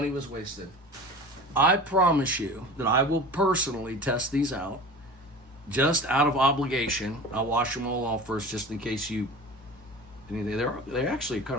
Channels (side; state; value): both; normal; correlation 0.37